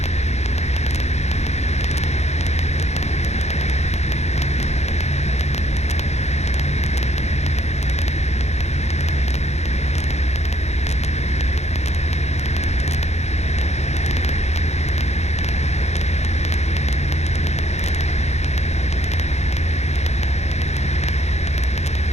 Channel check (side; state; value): right; late; 0.32 ms